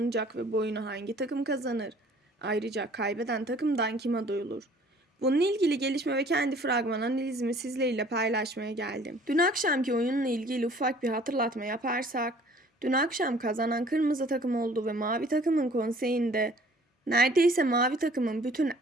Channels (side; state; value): both; normal; correlation 0.54